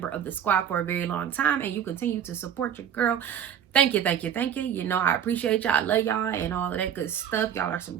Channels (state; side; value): quieter; left; 9.1 dB